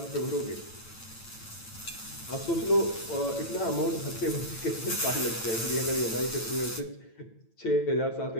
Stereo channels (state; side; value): late; right; 8.9 ms